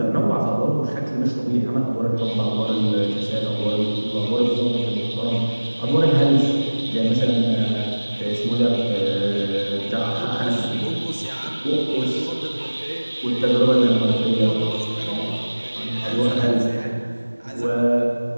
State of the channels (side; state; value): both; inverted; correlation -1.00